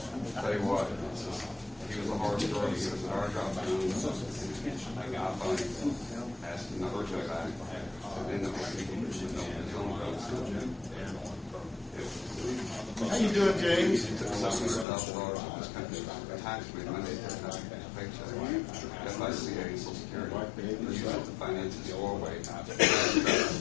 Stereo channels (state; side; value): drops out; right; at 14.9 s